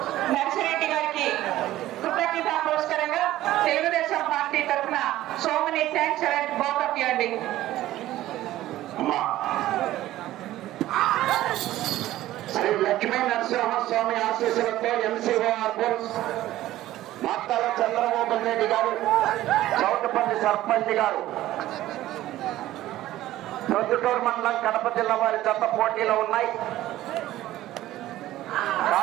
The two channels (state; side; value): quieter; left; 14.9 dB